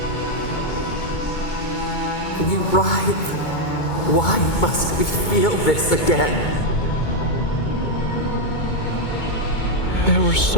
writhe. Why must we feel this again? There were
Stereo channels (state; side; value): late; right; 2.2 ms